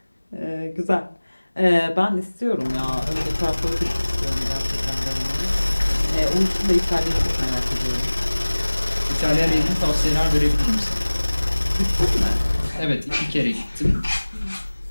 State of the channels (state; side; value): inverted; both; correlation -1.00